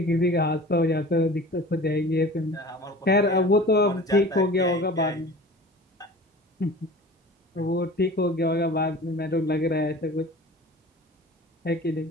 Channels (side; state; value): both; normal; correlation 0.40